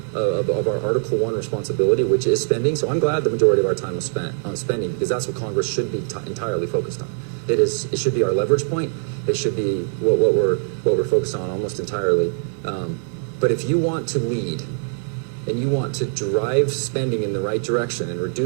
Article 1 responsibility, which is spending, so I'm glad the majority of our time was spent on spending, because that's what Congress should be entirely focused on. It should be our leverage point. It should be what we're focused on almost entirely. But if you want to lead and you want to drive spending in the right direction and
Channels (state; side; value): silent; left; digital silence